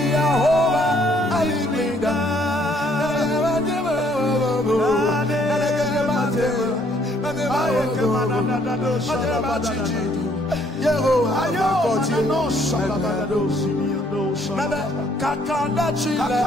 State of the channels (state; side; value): normal; both; correlation 0.65